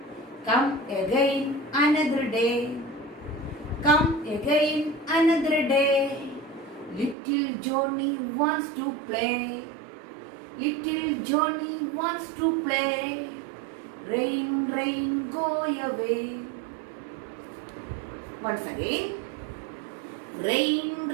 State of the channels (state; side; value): drops out; left; at 7.2 s